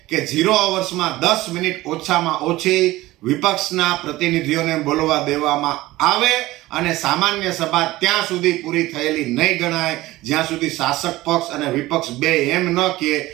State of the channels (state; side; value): quieter; left; 17.9 dB